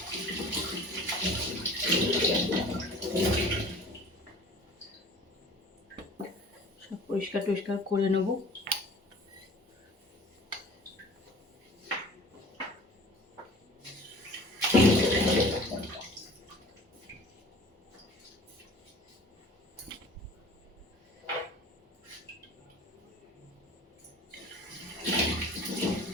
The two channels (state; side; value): normal; both; correlation 0.44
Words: সব পরিষ্কার টরিষ্কার করে নেব।